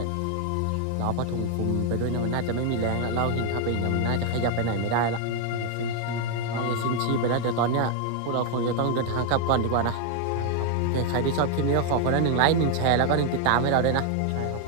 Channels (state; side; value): different; both; correlation 0.00